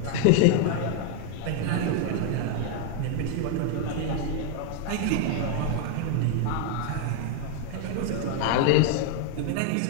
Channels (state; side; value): different; both; correlation 0.01